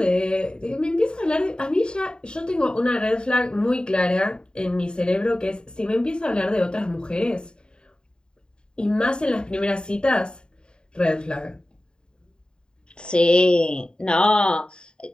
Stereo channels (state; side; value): late; right; 0.049 ms